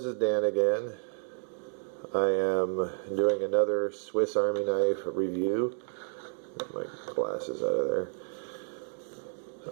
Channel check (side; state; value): left; silent; digital silence